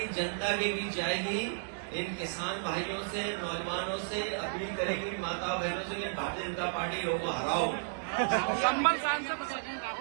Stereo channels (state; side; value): silent; left; digital silence